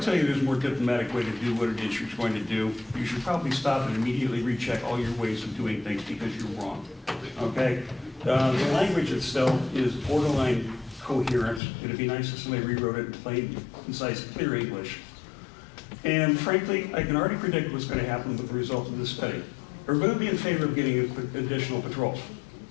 you there's a more diplomatic way to do what it is you're going to do, you should probably stop and immediately recheck all your ways of doing things because you're wrong, okay? The language itself is borderline coherent. It'd be nice if somebody rewrote it in plain, concise, clear English. And frankly, I can already predict what's going to happen with the result of this study. We're going to be in favor of getting additional patrols.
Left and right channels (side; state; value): right; drops out; at 11.6 s